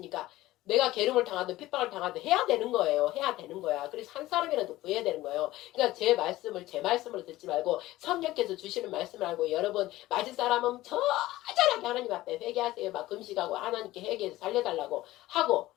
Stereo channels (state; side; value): quieter; right; 16.7 dB